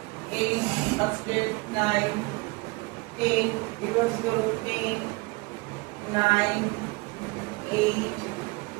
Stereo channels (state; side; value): quieter; left; 25.7 dB